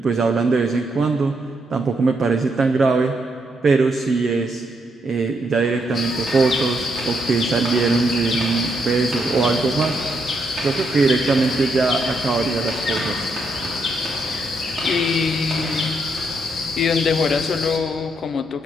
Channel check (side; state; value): both; normal; correlation 0.77